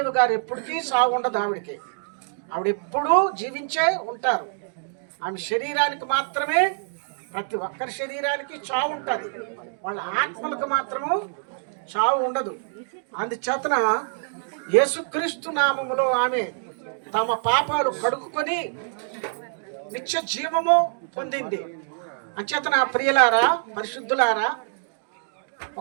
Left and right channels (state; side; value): silent; left; digital silence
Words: గారు ఎప్పటికీ సాగు ఉండదు. ఆవిడ ఎప్పుడూ జీవించే ఉంటారు. ఆమె శరీరానికి మాత్రమే, ప్రతి ఒక్కరి శరీరానికి చావు ఉంటుంది, వాళ్ళ ఆత్మలకు మాత్రము చావు ఉండదు. అందుచేతన యేసుక్రీస్తు నామములో ఆమె తమ పాపాలు కడుక్కొని నిత్య జీవము పొందింది. అంచేతన ప్రియులారా, పరిశుద్ధులారా,